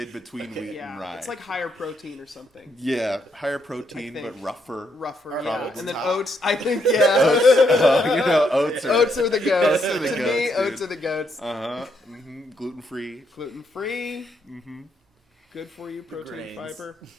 between wheat Yeah, and rye. it's like higher protein or something. yeah, higher protein I but think. rougher. Rougher, Are yeah. oats And then top? oats. I think, yeah. You know, oats are. Oats are the goats. Oats are the to me, goats, dude. oats are the goats. Gluten free. Gluten free. Good for you, protein, grains. fiber.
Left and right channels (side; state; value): both; normal; correlation 0.76